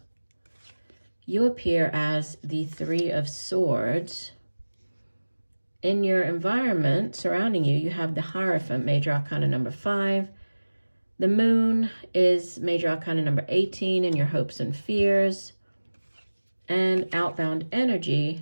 You appear as the 3 of Swords. In your environment surrounding you, you have the Hierophant, major arcana number 5. The Moon is major arcana number 18 in your hopes and fears. And outbound energy,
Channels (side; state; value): both; inverted; correlation -1.00